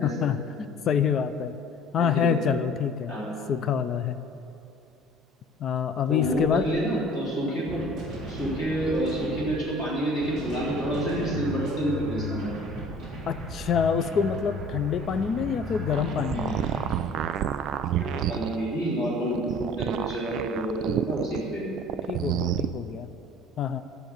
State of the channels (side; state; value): both; normal; correlation 0.48